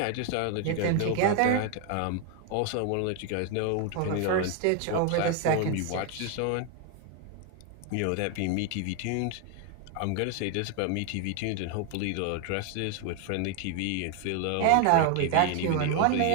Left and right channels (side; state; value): both; different; correlation 0.01